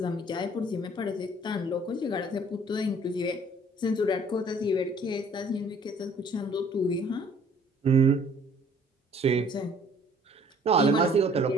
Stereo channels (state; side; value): normal; both; correlation 0.56